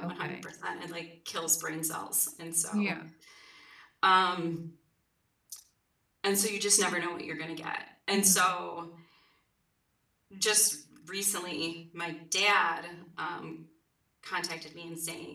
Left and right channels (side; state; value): both; identical; correlation 1.00